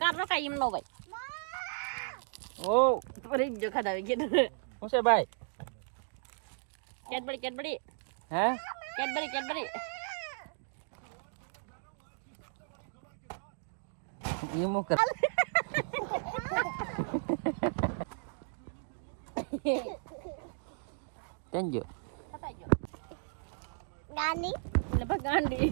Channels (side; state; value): left; silent; digital silence